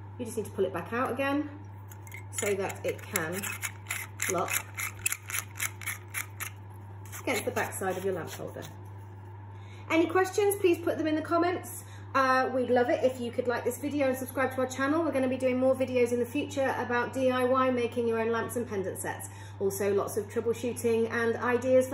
You just need to pull it back out again so that it can lock against the back side of your lamp holder. Any questions, please put them in the comments. We'd love it if you could like this video and subscribe to our channel. We're going to be doing more videos in the future about DIY, making your own lamps and pendant sets. Also lots of troubleshooting and ideas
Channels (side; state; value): both; identical; correlation 1.00